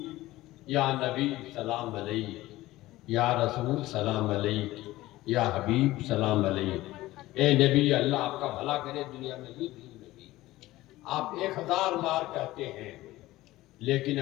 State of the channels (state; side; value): quieter; right; 17.2 dB